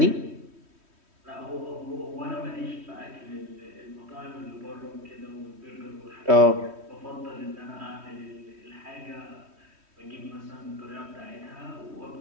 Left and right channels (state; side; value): late; left; 3.1 ms